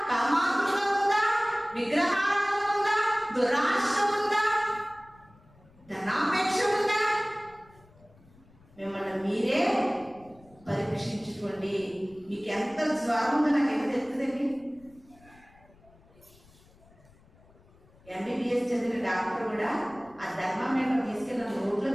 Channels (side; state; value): left; noise; rumble, 27 dB below the sound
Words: కామాతురత ఉందా? విగ్రహారాధన ఉందా? దురాశ ఉందా? ధనాపేక్ష ఉందా? మిమ్మల్ని మీరే పరీక్షించుకోండి. మీకు ఎంత జ్వరం ఉందో నాకు ఎంత తెలుస్తుందండి. MBBS చదివిన డాక్టర్ కూడా ఆ థర్మామీటర్ తీసుకెళ్ళి నోట్లో